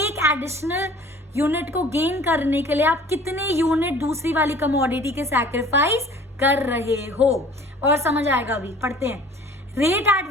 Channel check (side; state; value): both; normal; correlation 0.48